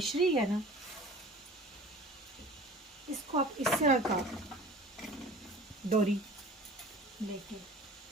है ना, इसको आप इस तरह का डोरी लेके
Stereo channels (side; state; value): both; normal; correlation 0.42